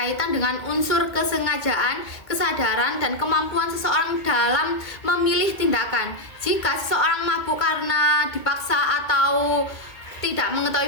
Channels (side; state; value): right; late; 2.2 ms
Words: dengan unsur kesengajaan, kesadaran, dan kemampuan seseorang dalam memilih tindakan. Jika seseorang mabuk karena dipaksa atau tidak